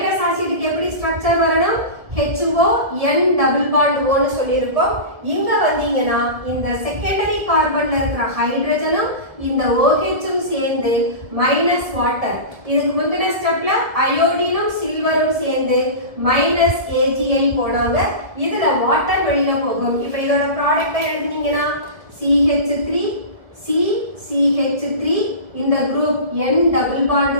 ஆசிட்க்கு எப்படி ஸ்ட்ரக்சர் வரணும்? HO N double bond O னு சொல்லியிருக்கோம். இங்க வந்தீங்கன்னா இந்த செகண்டரி கார்பன்ல இருக்கிற ஹைட்ரஜனும் இந்த OH-ம் சேர்ந்து மைனஸ் வாட்டர். இதுக்கு முந்தின ஸ்டெப்ல அயோடினும் சில்வரும் சேர்ந்து -AgI போனாங்க. இதுல வாட்டர் வெளியில போகும். இப்ப இதோட ப்ராடக்ட்டை எழுதினீங்கன்னா CH3 CH3 இந்த group N double bond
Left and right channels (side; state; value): left; late; 1.4 ms